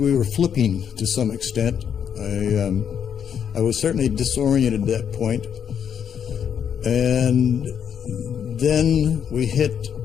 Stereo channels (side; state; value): right; quieter; 8.1 dB